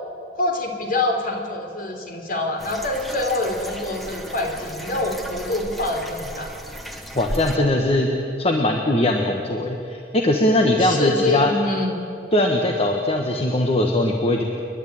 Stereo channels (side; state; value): both; normal; correlation 0.37